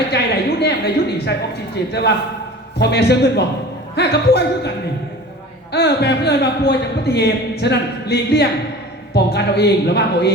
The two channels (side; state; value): both; normal; correlation 0.39